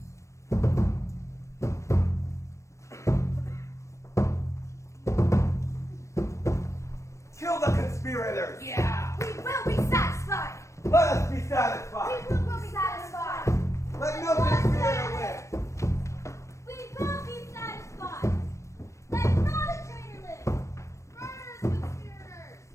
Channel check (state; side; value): late; right; 0.14 ms